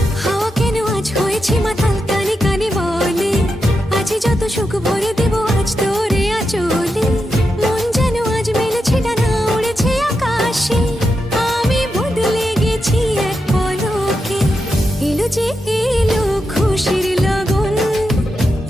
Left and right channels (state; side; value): normal; both; correlation 0.87